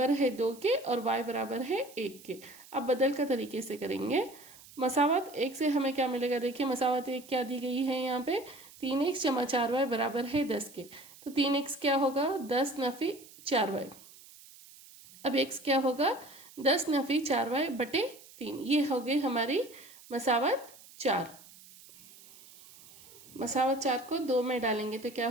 है 2 के और y बराबर है 1 के। अब बदल का तरीके से करेंगे, मसावत 1 से हमें क्या मिलेगा, देखिए मसावत 1 क्या दी गई है यहाँ पे 3x जमा 4y बराबर है 10 के, तो 3x क्या होगा 10 नफी 4y। अब x क्या होगा 10 नफी 4y बटे 3, ये हो गई हमारी मसावत 4। मसावत 4 को 2 में डालेंगे तो क्या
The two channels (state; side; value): noise; right; hiss, 21 dB below the sound